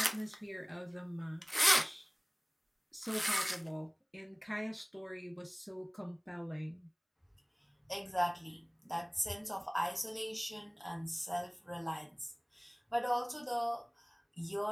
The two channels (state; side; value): identical; both; correlation 1.00